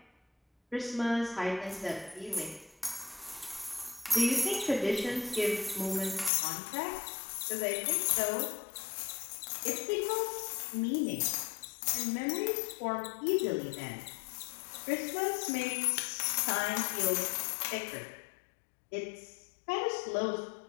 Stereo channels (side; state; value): right; drops out; at 6.3 s